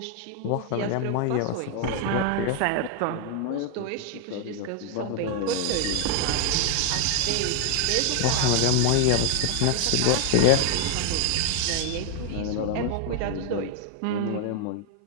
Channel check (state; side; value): different; both; correlation 0.00